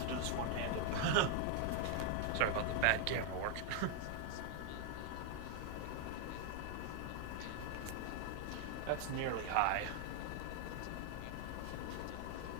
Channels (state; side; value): different; both; correlation 0.00